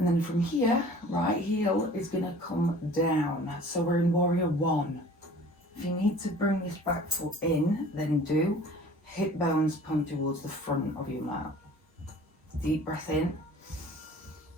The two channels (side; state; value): both; normal; correlation 0.47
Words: then from here, right heel is going to come down. So we're in warrior 1. If you need to bring this back foot in, then do. Hip bones point towards the front of your mat. Deep breath in.